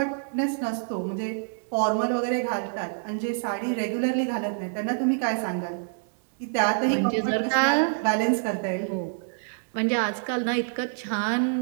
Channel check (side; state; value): left; silent; 60 dB below the other